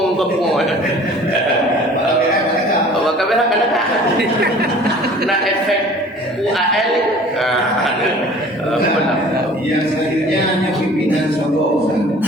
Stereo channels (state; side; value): normal; both; correlation 0.47